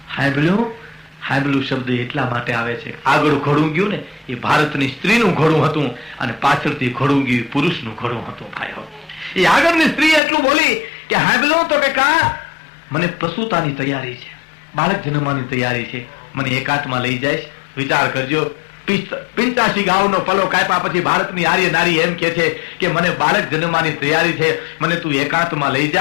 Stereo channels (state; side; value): drops out; right; at 10.2 s